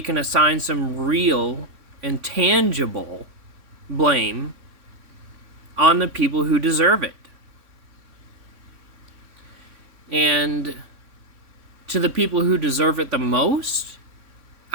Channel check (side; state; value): left; late; 3.6 ms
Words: can assign some real and tangible blame on the people who deserve it. And to the people who deserve it the most,